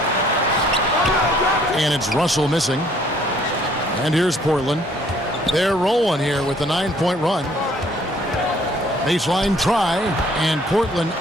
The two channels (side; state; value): both; normal; correlation 0.60